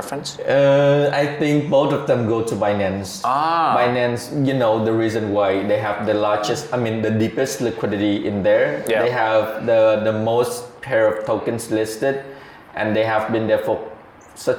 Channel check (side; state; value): both; identical; correlation 1.00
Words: I think both of them go to Binance. Binance, you know, the reason why they have the largest, the deepest liquidity in there. Yeah. They have the most pair of tokens listed, and they have been there for